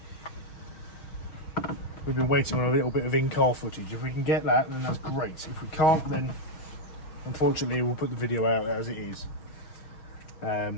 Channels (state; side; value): late; right; 6.3 ms